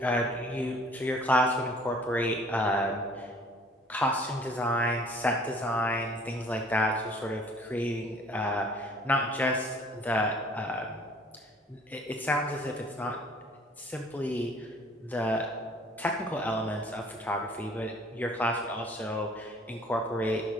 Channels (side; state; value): both; normal; correlation 0.54